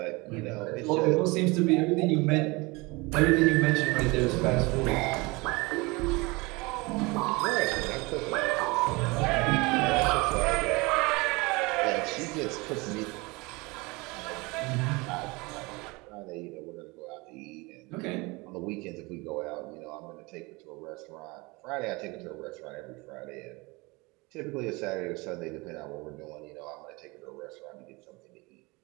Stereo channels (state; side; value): quieter; left; 25.0 dB